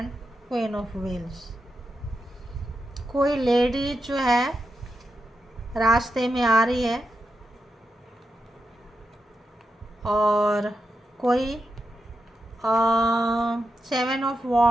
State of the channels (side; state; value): both; normal; correlation 0.87